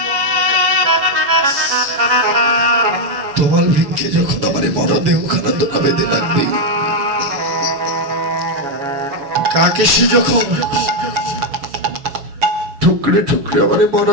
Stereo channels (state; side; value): late; left; 7.1 ms